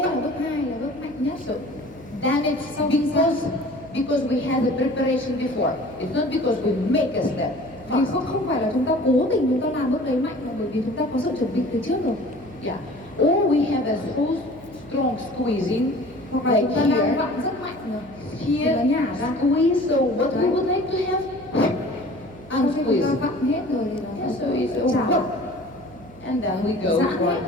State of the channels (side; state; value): right; noise; hum, 21 dB below the sound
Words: là bước 2 là bước mạnh nhất. So then it's because we had the preparation before. It's not because we make a step. Vì không phải là chúng ta cố tình chúng ta làm bước đấy mạnh, mà bởi vì chúng ta có sự chuẩn bị từ trước rồi. Yeah. Or we have a so strong squeezing, Hoặc là like chúng ta đang here. vặn rất mạnh rồi. Here, Nó nhả ra. squeeze. So what we Right. would like to have Cho nên khi chúng ta squeeze. vặn hết rồi thì nó Yeah, so sẽ it's trả lại. and then we go Giãn for. hết